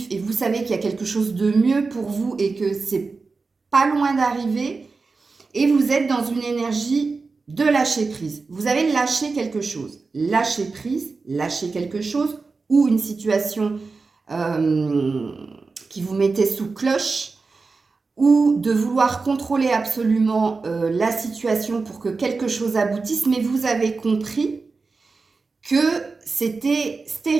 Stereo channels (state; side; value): quieter; left; 4.2 dB